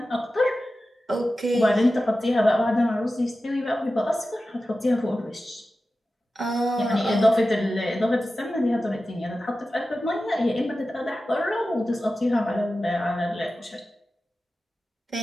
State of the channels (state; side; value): normal; both; correlation 0.94